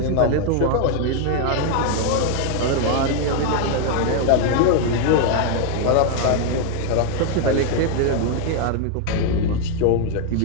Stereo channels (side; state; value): both; different; correlation 0.01